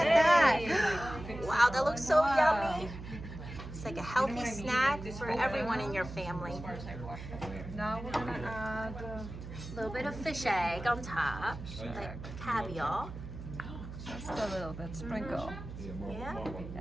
that. Wow, that looks so yummy. It's like a healthy snack for everyone in your family. Now we're gonna add A little bit of fish egg on top, like caviar. just a little bit, sprinkle. Yeah.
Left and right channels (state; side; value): noise; right; hum, 10 dB below the sound